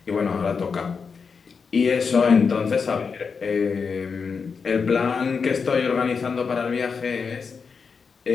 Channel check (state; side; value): quieter; right; 5.5 dB